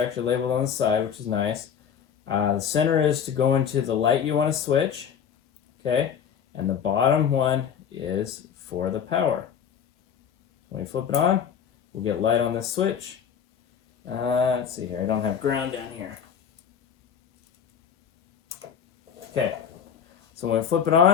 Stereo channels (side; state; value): right; quieter; 7.9 dB